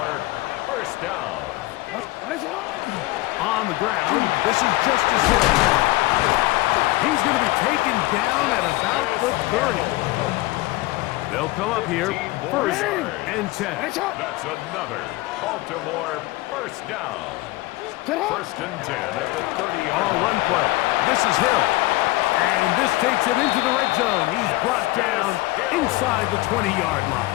first down. On the ground, this is Justice Hill. He's going to be taken down at about the 30. They'll come up here, 1st and 10. That's another Baltimore first down. 1st and 10 at the 30-yard On line. run play, this is Hill. And this takes him into the red zone. He's brought down inside the 20-yard line.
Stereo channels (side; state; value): right; quieter; 19.7 dB